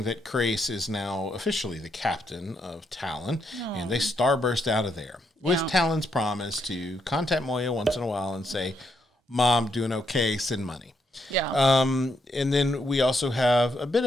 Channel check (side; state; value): both; normal; correlation 0.78